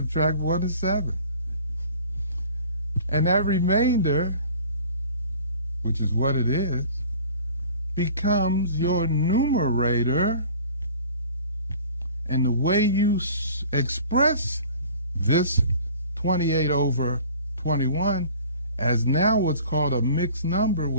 1 is 7. And that remainder, which is what it is, becomes your numerator. And the way you express this 28 over 21 as now what's called a mixed number,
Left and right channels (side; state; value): both; inverted; correlation -0.47